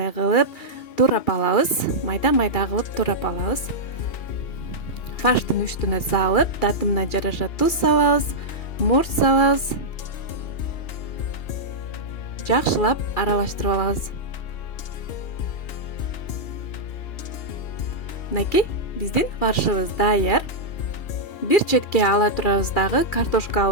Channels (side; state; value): right; late; 2.3 ms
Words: кылып турап алабыз. Майда-майда кылып турап алабыз. Фарштын үстүнө салып, татымына жараша туз салабыз, мурч салабыз. Жакшылап аралаштырып алабыз. Мынакей, биздин фаршыбыз даяр. Бир четке ала турабыз дагы